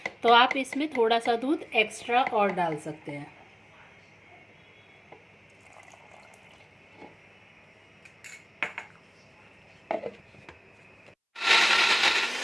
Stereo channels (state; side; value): identical; both; correlation 1.00